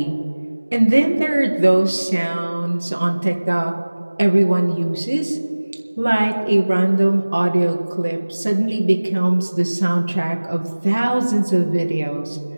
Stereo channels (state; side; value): inverted; both; correlation -1.00